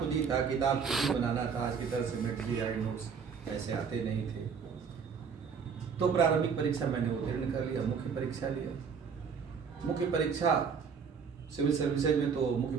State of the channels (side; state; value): left; quieter; 6.2 dB